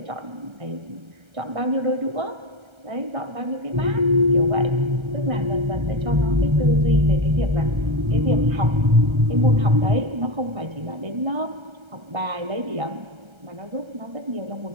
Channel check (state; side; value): late; left; 1.3 ms